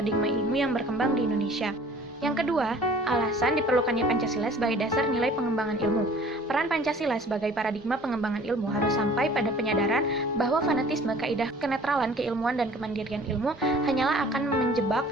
ilmu yang berkembang di Indonesia. Yang kedua, alasan diperlukannya Pancasila sebagai dasar nilai pengembangan ilmu. Peran Pancasila sebagai paradigma pengembangan ilmu harus sampai pada penyadaran bahwa fanatisme, kaidah kenetralan, keilmuan, dan kemandirian ilmu hanyalah akan menjebak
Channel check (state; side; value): normal; both; correlation 0.50